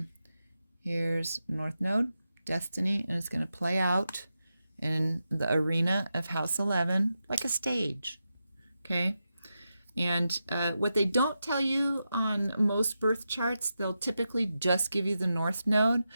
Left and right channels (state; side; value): inverted; both; correlation -0.89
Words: Here's North Node, Destiny, and it's going to play out in the arena of House 11 like a stage. Okay? And what they don't tell you on most birth charts, they'll typically just give you the North Node,